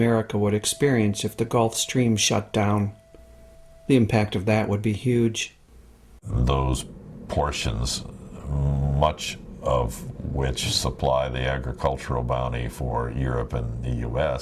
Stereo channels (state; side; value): identical; both; correlation 1.00